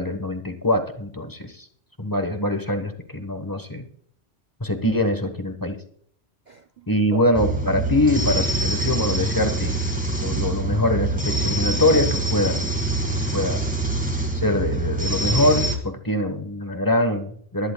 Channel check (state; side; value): normal; both; correlation -0.01